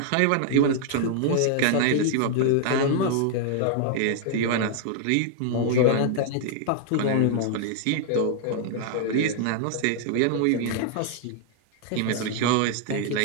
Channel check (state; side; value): different; both; correlation 0.00